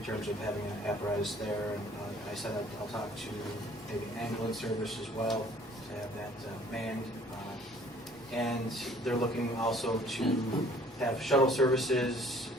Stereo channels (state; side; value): normal; both; correlation 0.55